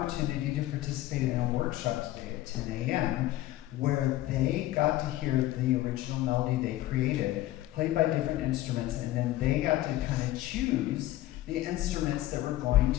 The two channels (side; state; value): right; quieter; 15.7 dB